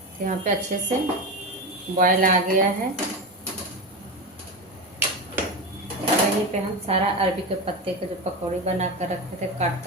यहाँ पे अच्छे से बॉयल आ गया है। यहीं पे हम सारा अरबी के पत्ते के जो पकौड़ी बना कर रखे थे काट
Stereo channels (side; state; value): both; normal; correlation 0.19